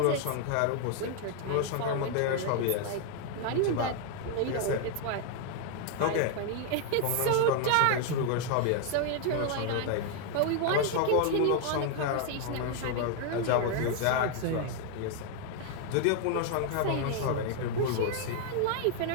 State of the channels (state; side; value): different; both; correlation 0.00